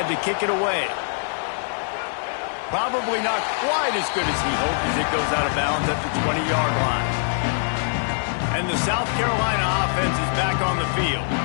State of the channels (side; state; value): right; silent; 59 dB below the other